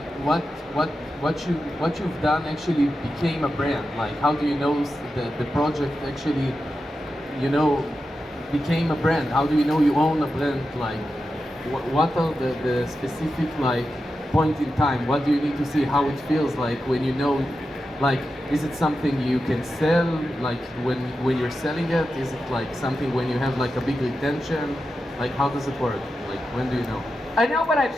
what you've done actually became a brand? Like how do you know the project actually, you know, became a brand? How do you know you own a brand? Like what are the specific like point in time? What do you need to see? How it feels like when you know, like is it something you can sell? Like when you're selling it, is it like something when you have like a big retention? Like how does it work? Like when do you know? I know when I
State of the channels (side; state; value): both; normal; correlation 0.90